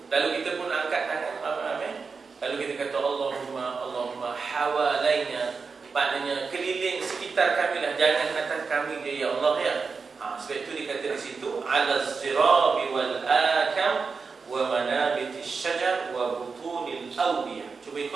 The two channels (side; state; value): left; quieter; 4.9 dB